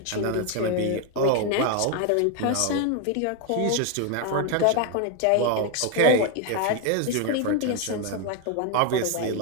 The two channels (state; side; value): different; both; correlation 0.01